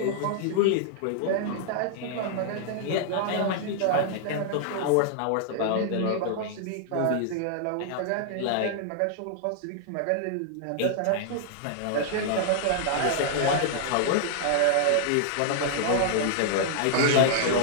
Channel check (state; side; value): different; both; correlation -0.01